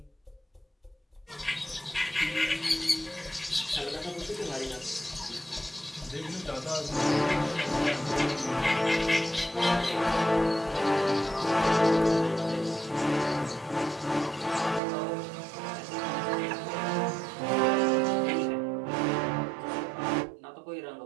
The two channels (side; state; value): left; drops out; at 14.8 s